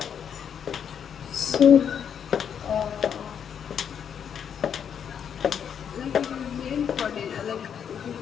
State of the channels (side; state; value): right; quieter; 8.1 dB